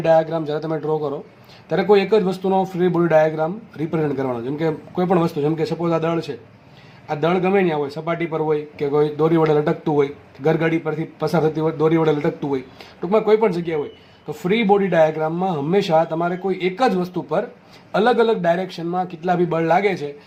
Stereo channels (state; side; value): identical; both; correlation 1.00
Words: ડાયાગ્રામ જ્યારે તમે ડ્રો કરો ત્યારે કોઈ એક જ વસ્તુનો ફ્રી બોડી ડાયાગ્રામ રિપ્રેઝેન્ટ કરવાનો. જેમ કે કોઈ પણ વસ્તુ, જેમ કે સપોઝ આ દળ છે, આ દળ ગમે ત્યાં હોય, સપાટી પર હોય કે કોઈ દોરી વડે લટકતું હોય, ગરગાડી પરથી પસાર થતી હોય દોરી વડે લટકતું હોય, ટૂંકમાં કોઈ પણ જગ્યાએ હોય, તો ફ્રી બોડી ડાયાગ્રામમાં હંમેશા તમારે કોઈ એક જ વસ્તુ પર અલગ અલગ ડાયરેક્શનમાં કેટલા બી બળ લાગે છે